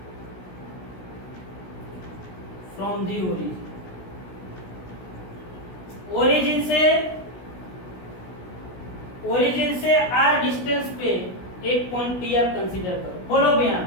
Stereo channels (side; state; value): right; late; 16 ms